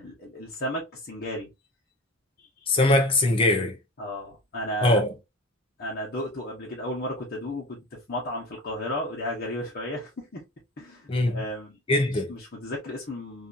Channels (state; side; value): normal; both; correlation 0.34